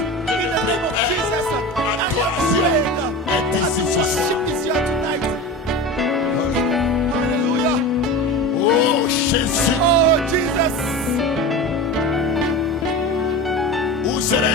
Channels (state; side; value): normal; both; correlation 0.29